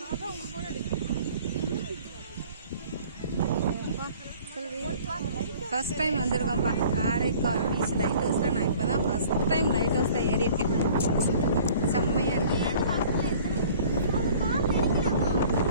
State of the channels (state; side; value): inverted; both; correlation -0.50